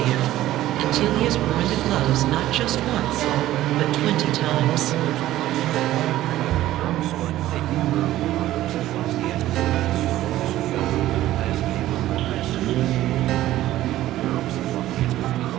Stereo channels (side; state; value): left; quieter; 14.5 dB